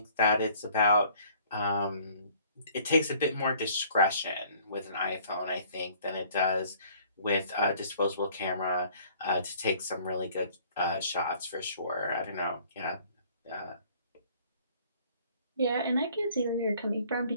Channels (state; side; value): inverted; both; correlation -0.56